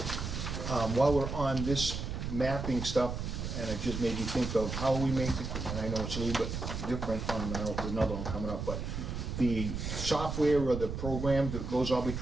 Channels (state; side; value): noise; right; rumble, 4 dB below the sound